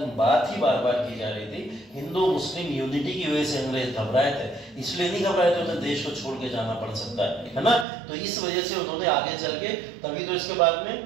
बात ही बार बार की जा रही थी हिंदू मुस्लिम यूनिटी की वजह से अंग्रेज घबराए थे, इसलिए नहीं घबराए थे उन्हें देश को छोड़ के जाना पड़ सकता है ना। तो इस वजह से उन्होंने आगे चल के तभी तो इसके बाद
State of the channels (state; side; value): drops out; left; at 7.9 s